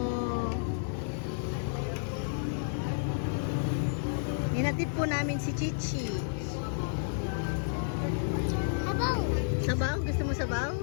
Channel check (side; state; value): right; silent; digital silence